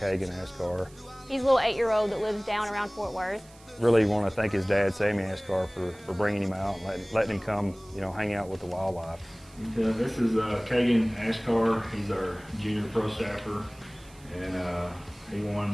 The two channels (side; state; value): right; noise; hiss, 25 dB below the sound